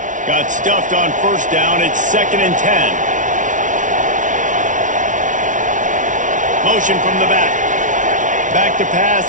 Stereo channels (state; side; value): late; left; 0.37 ms